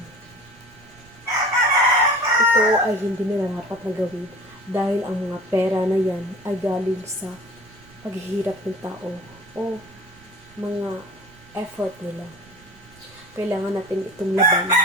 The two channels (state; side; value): noise; right; rumble, 25 dB below the sound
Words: Ito ay hindi nila dapat na gawin dahil ang mga pera na yan ay galing sa paghihirap ng tao o mga effort nila. Kailangan natin itong labanan